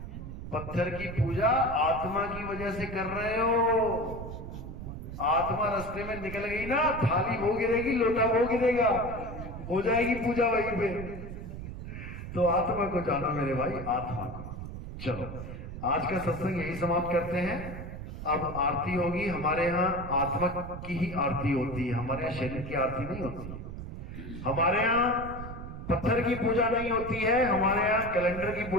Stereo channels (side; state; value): right; noise; rumble, 9 dB below the sound